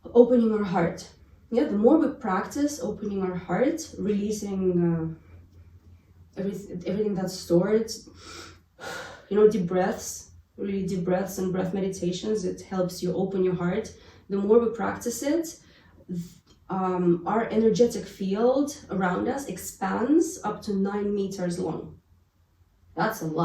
opening our heart. Yeah, the more we practice opening our heart, releasing everything that's stored, deep breaths, really deep breaths and breath meditations, it helps you open your heart. the more we practice it, our energetic field around us expands up to 9 meters long. That's a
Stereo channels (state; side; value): identical; both; correlation 1.00